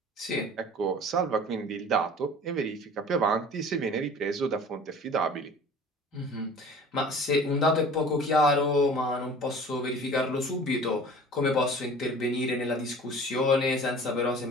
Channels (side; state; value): both; normal; correlation 0.44